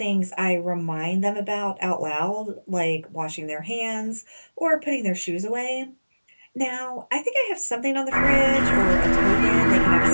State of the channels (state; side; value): inverted; both; correlation -1.00